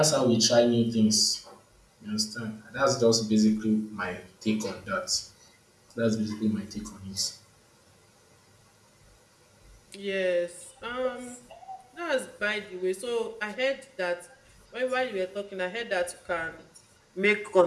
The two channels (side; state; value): both; identical; correlation 1.00